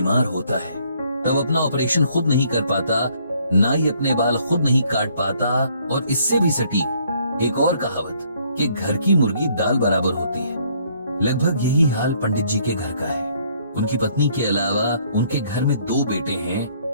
होता है तब अपना ऑपरेशन खुद नहीं कर पाता, ना ही अपने बाल खुद नहीं काट पाता, और इससे भी सटीक एक और कहावत कि घर की मुर्गी दाल बराबर होती है, लगभग यही हाल पंडित जी के घर का है। उनकी पत्नी के अलावा उनके घर में 2 बेटे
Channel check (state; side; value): inverted; both; correlation -0.65